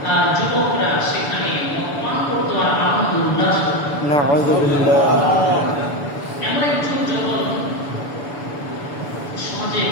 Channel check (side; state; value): right; late; 7.0 ms